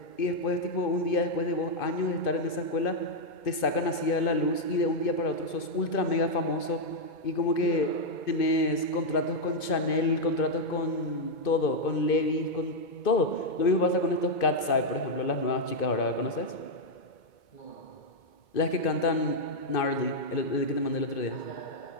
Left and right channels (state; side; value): late; right; 2.5 ms